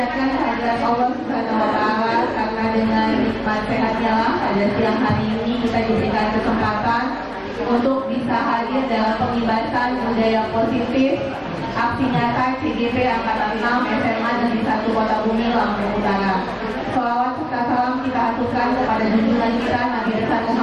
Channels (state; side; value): identical; both; correlation 1.00